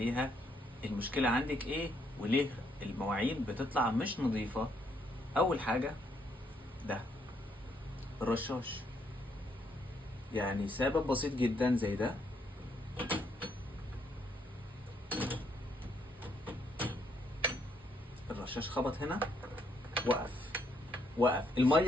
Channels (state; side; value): normal; both; correlation 0.72